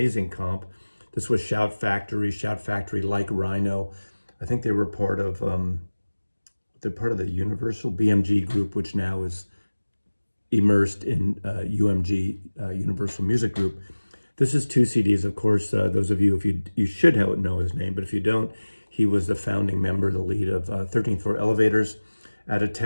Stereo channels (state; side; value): inverted; both; correlation -1.00